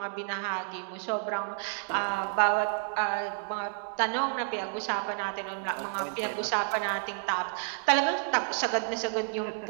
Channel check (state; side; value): silent; left; digital silence